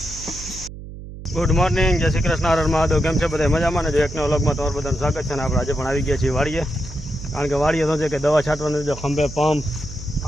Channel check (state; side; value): noise; right; hum, 13 dB below the sound